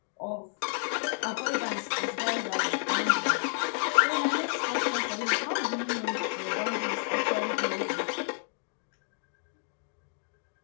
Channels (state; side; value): silent; right; 58 dB below the other